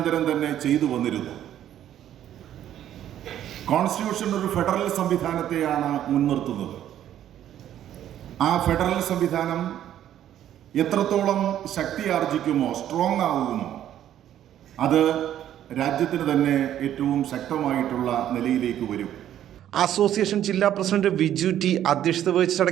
തന്നെ ചെയ്തു വന്നിരുന്നു. കോൺസ്റ്റിറ്റ്യൂഷൻ ഒരു ഫെഡറൽ സംവിധാനത്തെയാണ് മുൻനിർത്തുന്നത്. ആ ഫെഡറൽ സംവിധാനം എത്രത്തോളം ശക്തി ആർജിക്കുമോ, സ്ട്രോങ് ആകുമോ, അത് രാജ്യത്തിന് തന്നെ ഏറ്റവും ശക്തമായിട്ടുള്ള നിലയിലേക്ക് വരും. അസോസിയേഷൻ ജില്ലാ പ്രസിഡന്റ് വിജു ടി അധ്യക്ഷത വഹിച്ച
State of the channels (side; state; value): left; quieter; 11.2 dB